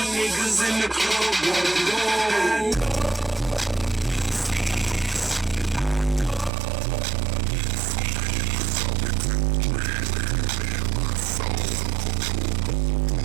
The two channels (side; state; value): left; drops out; at 6.5 s